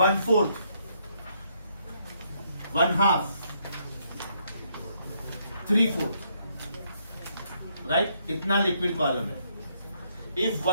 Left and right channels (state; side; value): inverted; both; correlation -0.73